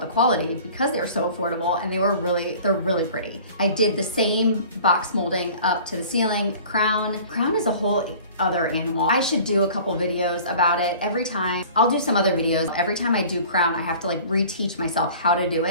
quality because they were so affordable, and they're really pretty. I did the same box molding up to the ceiling. Crown is a whole other animal. I should do a couple videos about it. Every time, I'll do some other videos. Every time I do crown, I have to like reteach myself how to do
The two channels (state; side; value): inverted; both; correlation -0.45